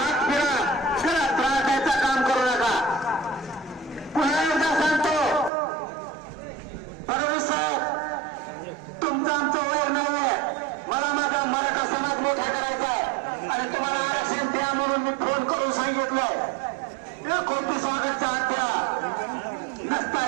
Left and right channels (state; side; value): drops out; left; at 5.5 s